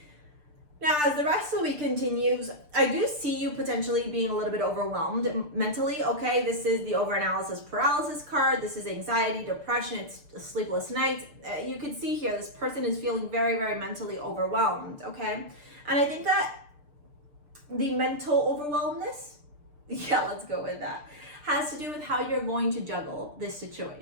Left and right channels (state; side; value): late; left; 6.7 ms